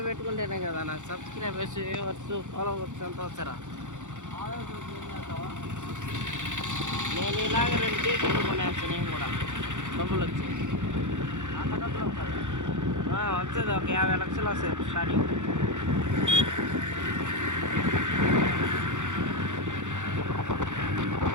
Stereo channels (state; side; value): late; left; 0.85 ms